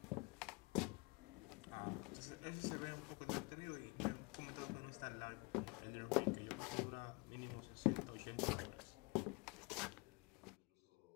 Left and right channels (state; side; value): quieter; right; 28.6 dB